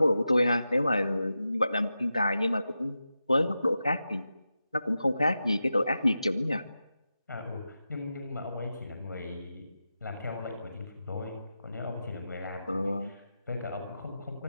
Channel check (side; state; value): both; inverted; correlation -0.91